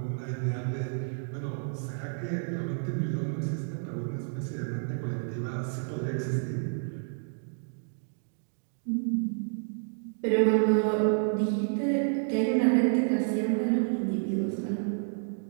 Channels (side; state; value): left; silent; digital silence